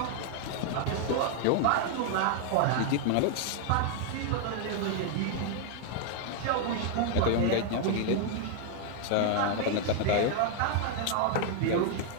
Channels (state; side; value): different; both; correlation 0.00